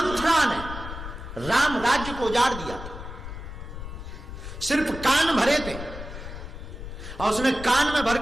ने राम राज्य को उजाड़ दिया था, सिर्फ कान भरे थे, और उसने कान में भर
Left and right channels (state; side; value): noise; left; rumble, 10 dB below the sound